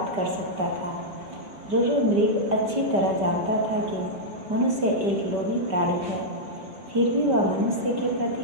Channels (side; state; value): left; late; 5.1 ms